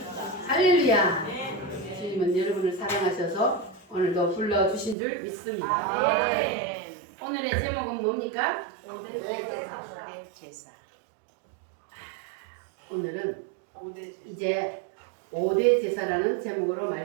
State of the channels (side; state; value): left; drops out; at 5.0 s